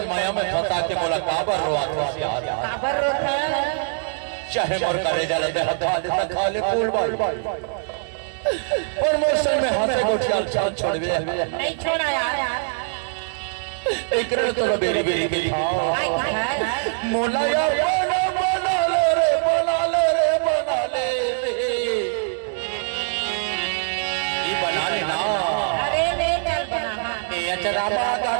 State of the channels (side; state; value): left; silent; digital silence